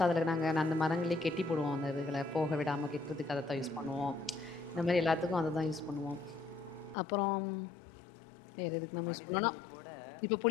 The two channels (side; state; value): right; drops out; at 7.0 s